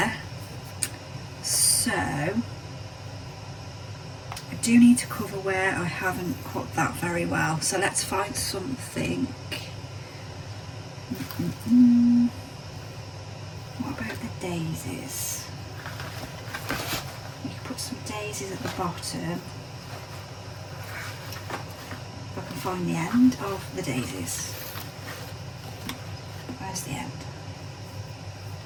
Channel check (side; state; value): both; identical; correlation 1.00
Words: So I do need to cover where I haven't cut that very well, so let's find something. What about the daisies? You can put some daisies at the bottom. If I can find the end of the daisies. Where's the end?